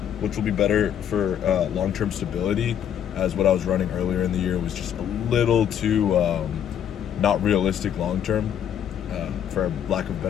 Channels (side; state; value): right; quieter; 9.3 dB